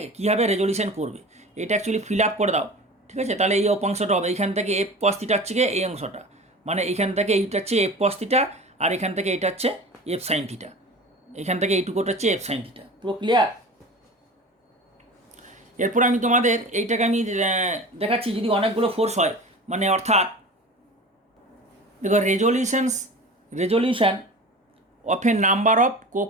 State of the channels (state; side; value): normal; both; correlation 0.36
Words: কীভাবে রেজলিউশন করবে এটা অ্যাকচুয়ালি ফিল আপ করে দাও, ঠিক আছে? তাহলে এই অংশটা হবে, এইখান থেকে এফ কস থিটা হচ্ছে গিয়ে এই অংশটা, মানে এইখান থেকে এইটা হচ্ছে এফ কস থিটা, আর এখান থেকে এইটা হচ্ছে এফ সাইন থিটা, এখান থেকে এইটুকুটা হচ্ছে এফ সাইন থিটা। পুরো ক্লিয়ার? এরপর আমি তোমাদের এইটাকে আমি দেখাচ্ছি, যদি অনেকগুলো ফোর্স হয়, মানে অর্থাৎ দেখো resolution of a number of